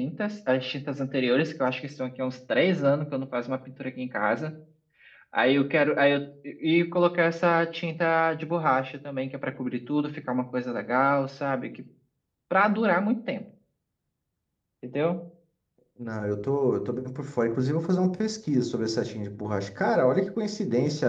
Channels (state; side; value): identical; both; correlation 1.00